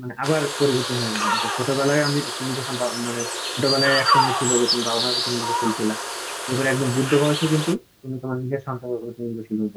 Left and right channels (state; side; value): identical; both; correlation 1.00